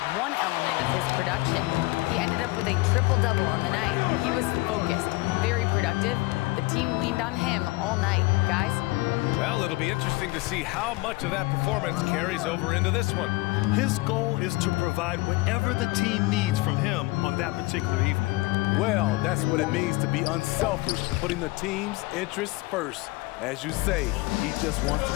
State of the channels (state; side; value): quieter; right; 22.5 dB